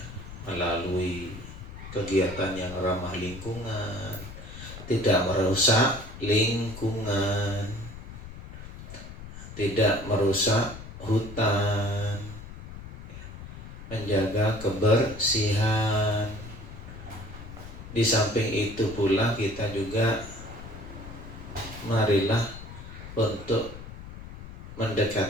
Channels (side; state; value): left; noise; rumble, 12 dB below the sound